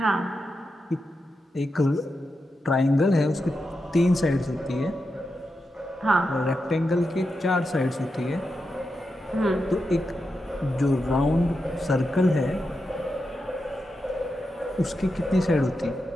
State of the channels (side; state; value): both; normal; correlation 0.88